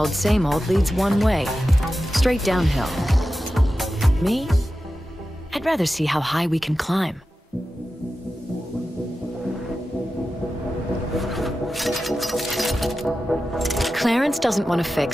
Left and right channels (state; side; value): normal; both; correlation 0.93